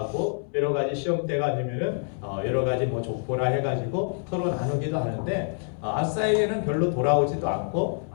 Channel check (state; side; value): silent; right; 61 dB below the other